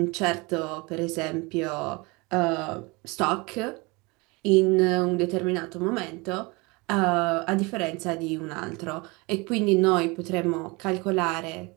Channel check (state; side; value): quieter; left; 26.2 dB